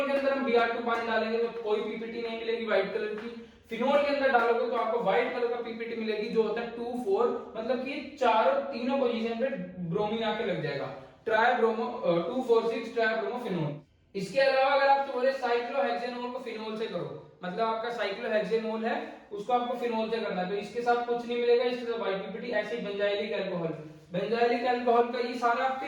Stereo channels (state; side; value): identical; both; correlation 1.00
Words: के अंदर हम Br2 पानी डालेंगे तो कोई पीपीटी नहीं मिलेगी व्हाइट कलर की। फिनोल के अंदर डालोगे तो आपको व्हाइट कलर का पीपीटी मिलेगी, जो होता है 2,4, मतलब कि तीनों पोजीशन पे ब्रोमीन आके लग जाएगा। ट्राइब्रोमो 2,4,6 ट्राइब्रोमोफिनोल। इसके अलावा अगर आप बोले साइक्लोहेक्सेनोल को फिनोल से करो, मतलब आपका साइक्लोहेक्सेनोल है उसको आपको फिनोल से करना है, तो इसके साथ कुछ नहीं मिलेगा, इसके साथ व्हाइट पीपीटी। ऐसे ही बेंजाइलिक अल्कोहल, बेंजाइलिक अल्कोहल का ये सारा आपके